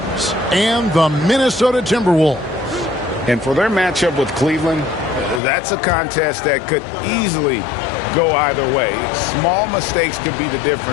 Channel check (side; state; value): right; drops out; at 5.4 s